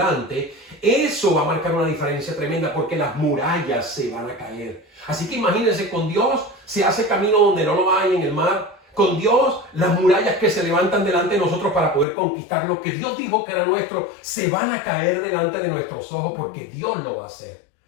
eso va a marcar una diferencia tremenda porque las murallas se van a caer. Así que imagínense, con Dios se hace camino donde no lo hay en el mar. Con Dios, las murallas que se levantan delante de nosotros para poder conquistar lo que Dios dijo que era nuestro, se van a caer delante de nuestros ojos porque Dios lo va a hacer.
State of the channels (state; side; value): drops out; right; at 12.1 s